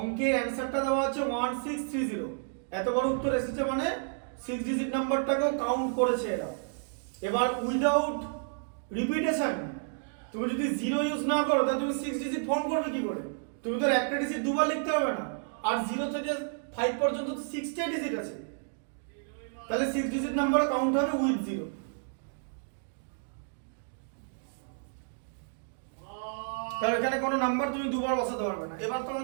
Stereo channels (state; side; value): silent; left; digital silence